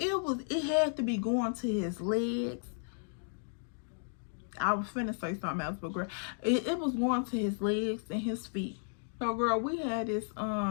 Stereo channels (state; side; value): silent; right; digital silence